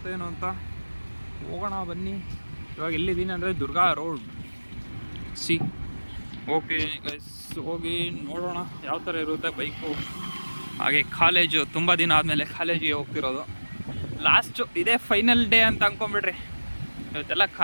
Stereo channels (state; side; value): inverted; both; correlation -1.00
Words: ಏನೋ ಅಂತ. ಹೋಗೋಣ ಬನ್ನಿ. ಇವಾಗ ಎಲ್ಲಿದ್ದೀನಿ ಅಂದರೆ ದುರ್ಗಾ ರೋಡ್ ಓಕೆ ಗೈಸ್, ಹೋಗಿ ನೋಡೋಣ ಯಾವ ಥರ ಇರುತ್ತೆ ಬೈಕು. ಹಾಗೆ ಕಾಲೇಜು, ತುಂಬ ದಿನ ಆದಮೇಲೆ ಕಾಲೇಜಿಗೆ ಹೋಗ್ತಿರೋದು. ಲಾಸ್ಟು ಇದೇ ಫೈನಲ್ ಡೇ ಅಂತ ಅಂದ್ಕೊಂಬಿಡ್ರಿ. ಇವತ್ತೆಲ್ಲ